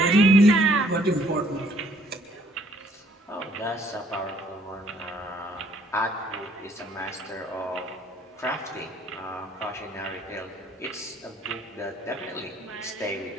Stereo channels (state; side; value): normal; both; correlation 0.63